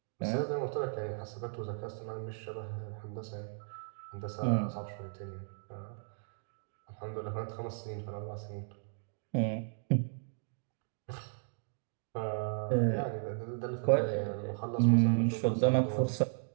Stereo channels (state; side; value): silent; left; digital silence